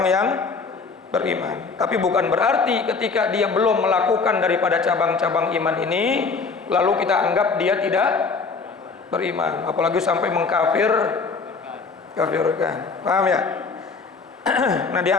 yang beriman. Tapi bukan berarti ketika dia belum melakukan daripada cabang-cabang iman ini lalu kita anggap dia tidak beriman, apalagi sampai mengkafirkan. Paham ya? Nah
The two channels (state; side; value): quieter; right; 4.7 dB